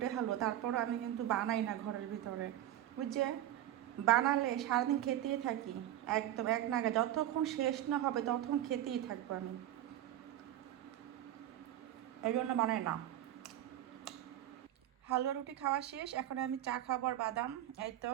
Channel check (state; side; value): quieter; left; 12.7 dB